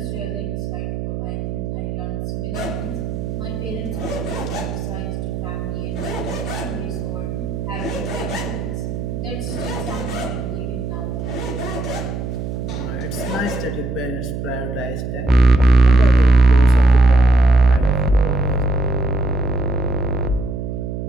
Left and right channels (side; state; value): right; noise; hum, 5 dB below the sound